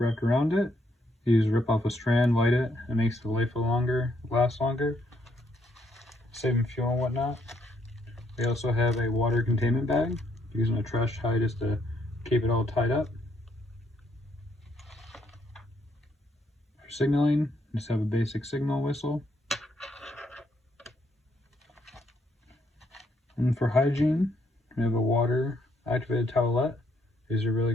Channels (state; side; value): normal; both; correlation 0.73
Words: wrapped around it. You just rip off a strand, light it, and it makes the life longer, last longer, saving fuel and whatnot. We also have a water containment bag, using a trash tie just to keep it all tied up. For signaling, just have a basic signal whistle. And for hygiene, we have a water activated towelette. These are really